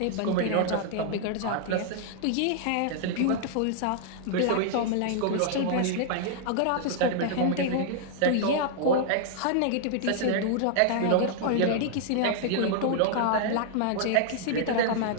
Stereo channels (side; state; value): both; different; correlation -0.01